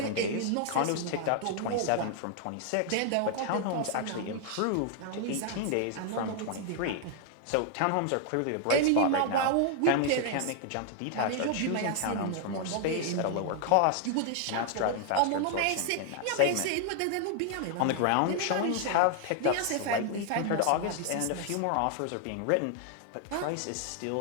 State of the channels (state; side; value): different; both; correlation 0.00